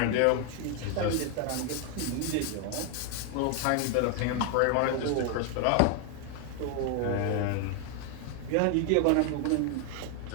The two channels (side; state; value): both; different; correlation 0.01